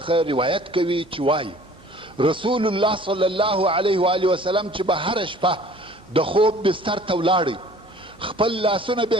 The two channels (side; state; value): both; normal; correlation 0.50